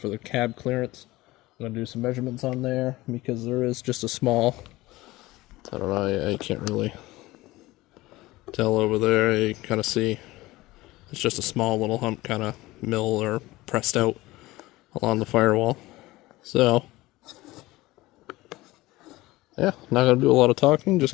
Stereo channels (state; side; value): quieter; right; 19.2 dB